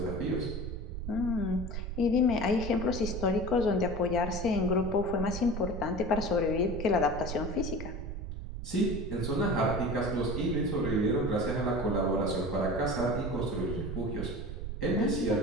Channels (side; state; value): right; noise; rumble, 6 dB below the sound